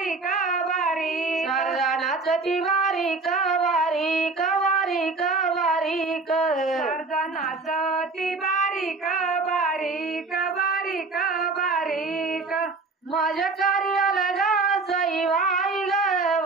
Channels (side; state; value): left; quieter; 3.9 dB